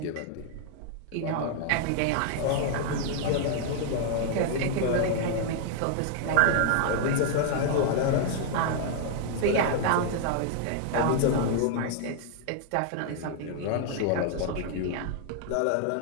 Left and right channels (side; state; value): both; different; correlation 0.00